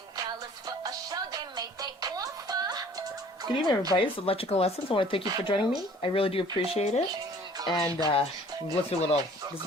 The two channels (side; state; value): both; normal; correlation 0.52